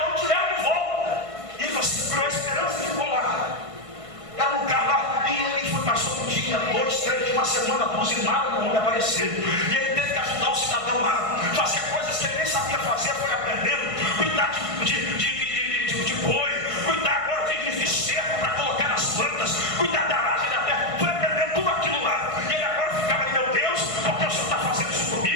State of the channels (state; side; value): late; left; 1.5 ms